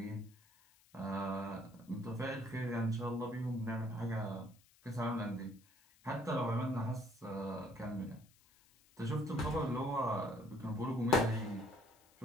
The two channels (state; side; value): noise; left; hiss, 29 dB below the sound